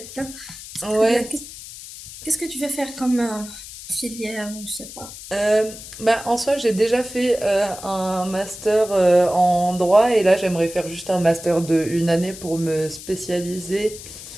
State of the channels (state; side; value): noise; left; hiss, 14 dB below the sound